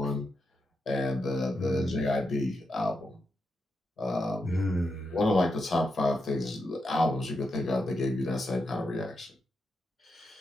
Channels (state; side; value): normal; both; correlation 0.85